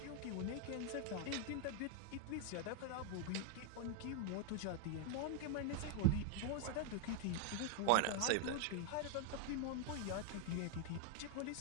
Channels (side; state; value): both; different; correlation 0.00